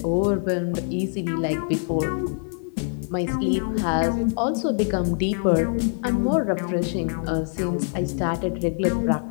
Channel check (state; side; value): silent; right; 62 dB below the other